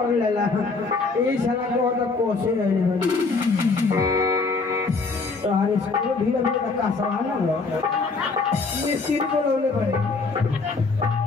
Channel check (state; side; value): quieter; right; 4.1 dB